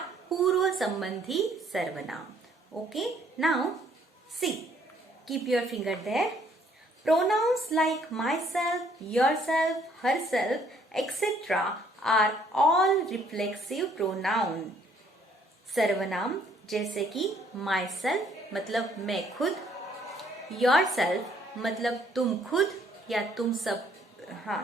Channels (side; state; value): both; normal; correlation 0.64